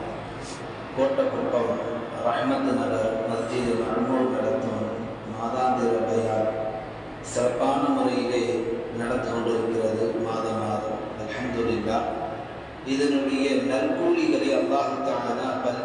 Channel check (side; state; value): both; identical; correlation 1.00